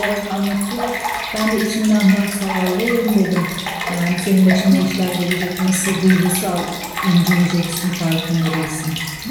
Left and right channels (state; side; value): identical; both; correlation 1.00